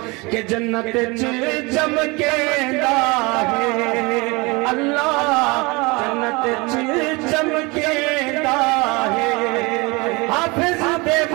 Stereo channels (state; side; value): quieter; left; 25.9 dB